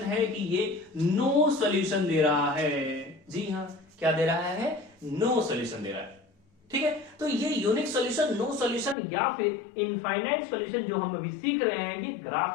है कि ये नो सॉल्यूशन दे रहा है। जी हाँ क्या दे रहा है? नो सॉल्यूशन दे रहा है। ठीक है, तो ये यूनिक सॉल्यूशन, नो सॉल्यूशन या फिर इनफाइनाइट सॉल्यूशन जो हम अभी सीख रहे हैं, ये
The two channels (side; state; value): right; drops out; at 9.0 s